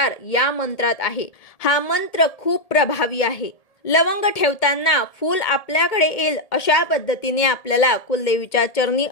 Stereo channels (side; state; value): right; late; 1.7 ms